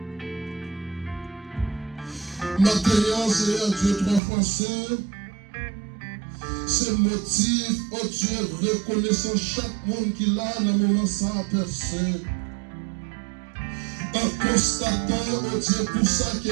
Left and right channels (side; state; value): left; drops out; at 4.2 s